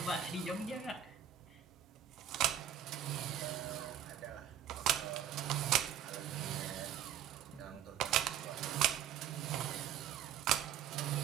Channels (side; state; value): left; quieter; 9.8 dB